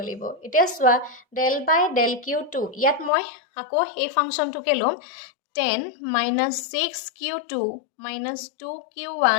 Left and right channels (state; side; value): drops out; right; at 3.1 s